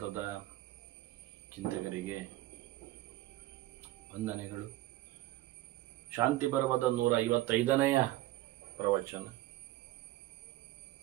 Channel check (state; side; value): quieter; left; 16.4 dB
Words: ಚಿಂತಕರಿಗೆ ವಂದನೆಗಳು. ಶಾಂತಿ ಪರ್ವದ 155ನೆಯ ಪ್ರವಚನ.